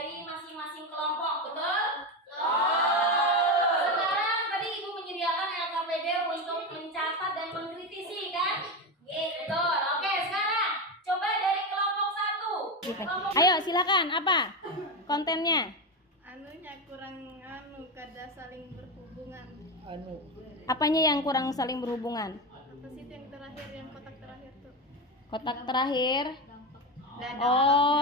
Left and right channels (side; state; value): both; normal; correlation 0.16